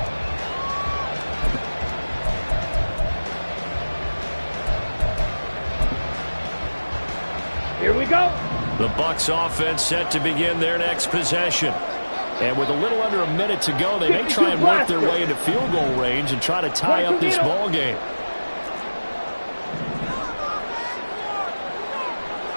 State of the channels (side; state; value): both; inverted; correlation -1.00